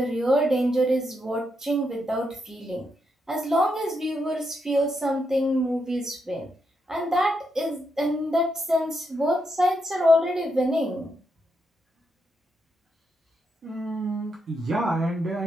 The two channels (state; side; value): normal; both; correlation 0.81